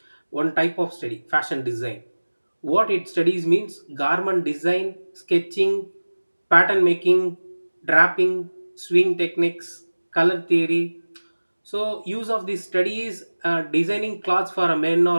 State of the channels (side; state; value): both; inverted; correlation -1.00